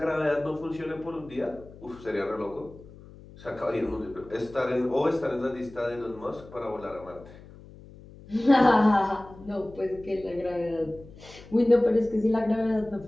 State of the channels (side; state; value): left; noise; hum, 19 dB below the sound